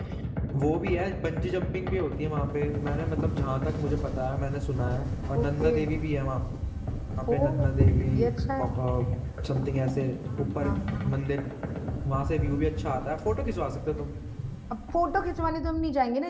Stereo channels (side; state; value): both; identical; correlation 1.00